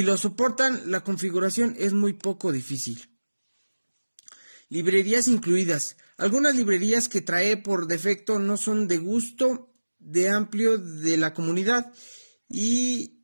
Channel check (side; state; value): both; inverted; correlation -1.00